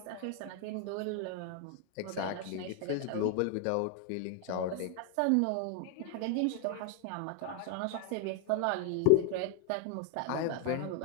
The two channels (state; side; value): different; both; correlation 0.00